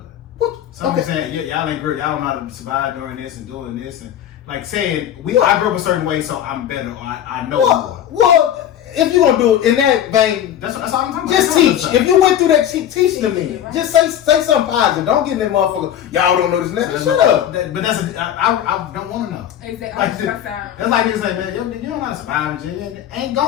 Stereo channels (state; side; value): quieter; right; 10.5 dB